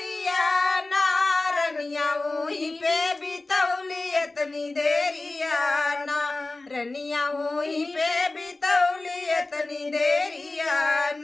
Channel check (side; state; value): right; quieter; 3.1 dB